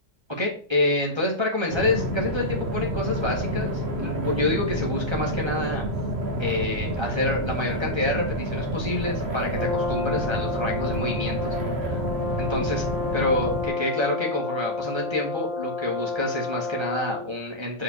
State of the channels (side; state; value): left; late; 1.3 ms